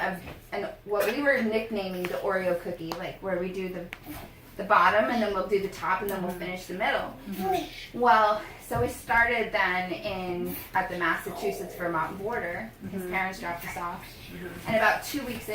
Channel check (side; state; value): both; identical; correlation 1.00